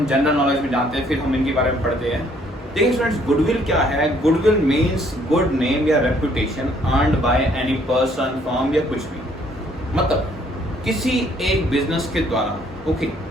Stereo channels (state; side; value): normal; both; correlation 0.64